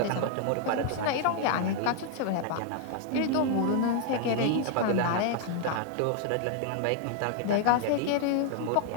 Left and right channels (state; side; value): different; both; correlation 0.00